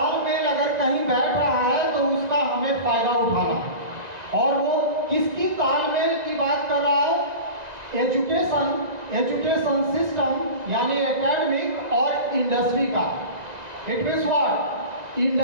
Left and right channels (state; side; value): late; left; 1.9 ms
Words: अगर कहीं बैठ रहा है तो उसका हमें फायदा उठाना, और वो किसकी तालमेल की बात कर रहा है? एजुकेशन सिस्टम यानी एकेडमिक और इंडस्ट्री का। It means what?